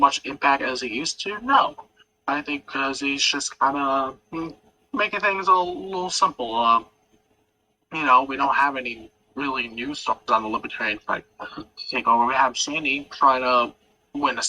impact as he used to? No. I think because he's just kind of making things a little simple. We don't have any really new stuff on the Libertarian fight to take over. We have Shandy trying to win the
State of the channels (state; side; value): identical; both; correlation 1.00